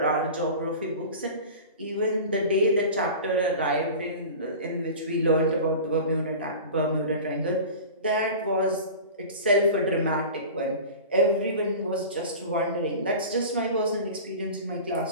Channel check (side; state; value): both; inverted; correlation -0.35